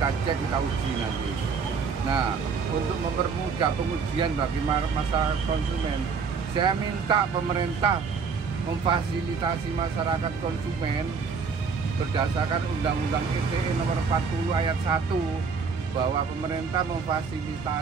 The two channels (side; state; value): left; quieter; 5.4 dB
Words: cek, kita uji nanti. Nah untuk mempermudah pengujian bagi masyarakat konsumen, saya minta pemerintah memfasilitasi masyarakat konsumen berdasarkan Undang-Undang ITE nomor 40 ayat 1 bahwa pemerintah